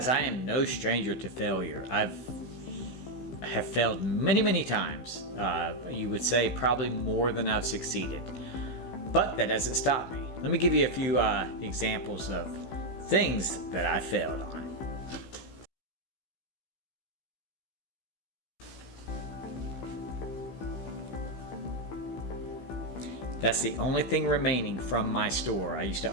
I am no stranger to failure. I have failed many times. You would say probably more than I've succeeded, but that doesn't stop me. Let me give you a few examples of things that I failed on. That's the only thing remaining from my store. I used to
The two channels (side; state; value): right; late; 16 ms